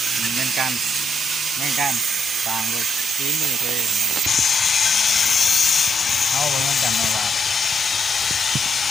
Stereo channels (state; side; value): normal; both; correlation 0.80